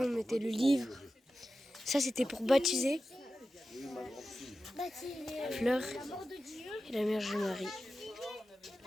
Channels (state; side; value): normal; both; correlation 0.93